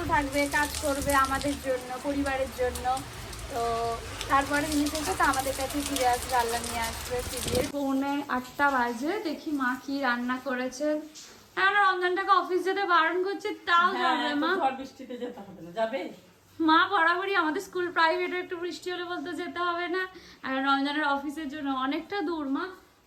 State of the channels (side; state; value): both; identical; correlation 1.00